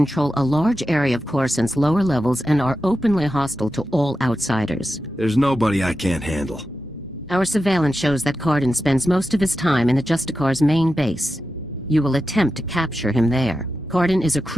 a large area of Coruscant's lower levels and are openly hostile to all outsiders. There's nobody I can't handle. Our surveillance shows that Karden spends most of his time in the Justicars' main base. You will attempt to capture him there. Karden is a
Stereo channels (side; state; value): both; normal; correlation 0.90